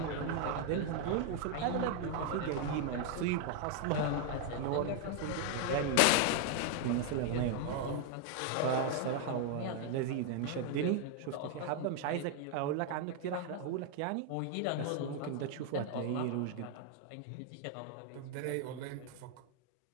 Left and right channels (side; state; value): both; different; correlation 0.00